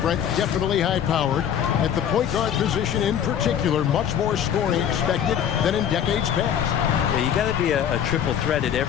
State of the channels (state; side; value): quieter; right; 9.1 dB